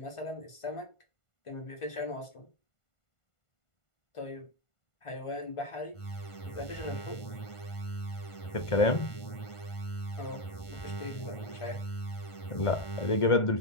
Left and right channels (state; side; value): late; right; 1.5 ms